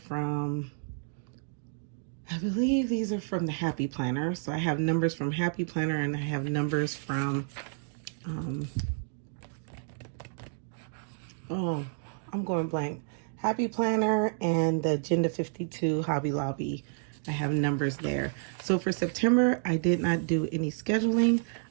from, I believe these are from the Happy Planner. So I have numbers from Happy Planner and I have numbers from, oh, I'm going blank. Happy Planner and the Agenda 52 Hobby Lobby. I have numbers there. So for September, I did not do any scheduling.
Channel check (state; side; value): silent; left; digital silence